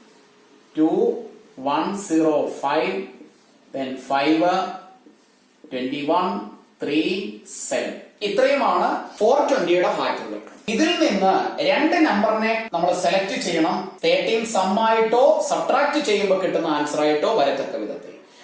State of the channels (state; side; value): identical; both; correlation 1.00